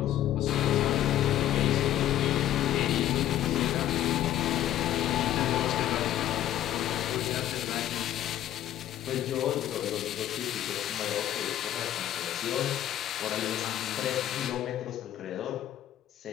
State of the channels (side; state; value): right; quieter; 12.3 dB